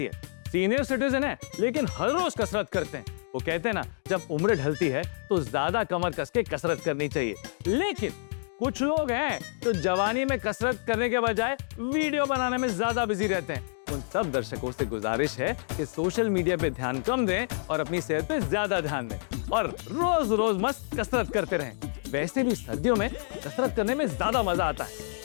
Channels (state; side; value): silent; right; digital silence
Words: है। सीनियर सिटीजन है लेकिन हर रोज कसरत करते हैं। वो कहते हैं ना, जब उम्र ढलती है तो ज्यादा कमर कस के कसरत करनी चाहिए। लेकिन कुछ लोग हैं जो जवानी में कसरत करने के बजाय वीडियो बनाने में ज्यादा बिजी रहते हैं। उन सब दर्शकों से गुजारिश है कि सोशल मीडिया पे ध्यान कम दें और अपनी सेहत पे ज्यादा ध्यान दें और रोज रोज मस्त कसरत करते रहें। वैसे भी सर्दियों में कसरत करने में ज्यादा मजा आता है,